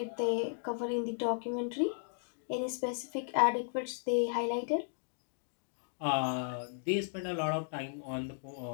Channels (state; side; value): silent; right; digital silence